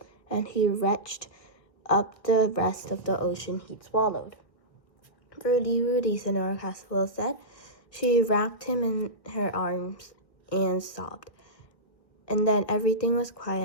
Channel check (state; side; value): late; right; 1.6 ms